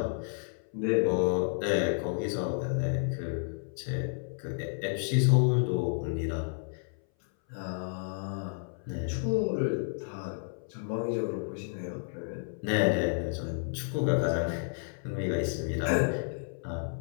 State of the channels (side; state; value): right; silent; 57 dB below the other